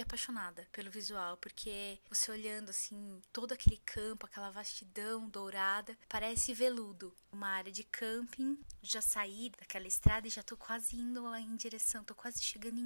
apaixonada pelo visual, porque você olhando assim, todo aquele campo, aquela vastidão dourada, parece veludo. Uma área de camping, já saí daquela estrada e já tô quase indo em direção, tô quase chegando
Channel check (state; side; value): inverted; both; correlation -1.00